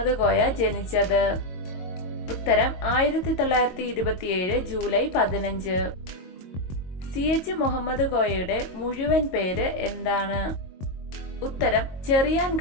കോയ ജനിച്ചത്? ഉത്തരം 1927 ജൂലൈ 15. CH മുഹമ്മദ് കോയയുടെ മുഴുവൻ പേര് എന്താണ്? ഉത്തരം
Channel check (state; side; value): late; right; 22 ms